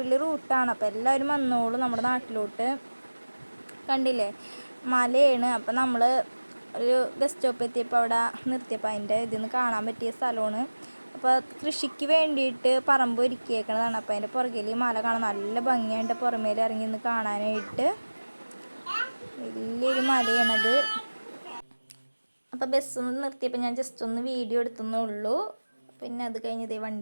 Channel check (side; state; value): both; inverted; correlation -1.00